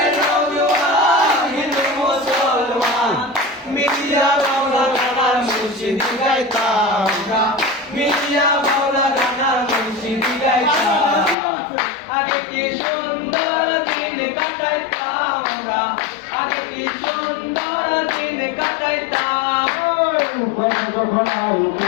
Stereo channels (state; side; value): drops out; right; at 11.4 s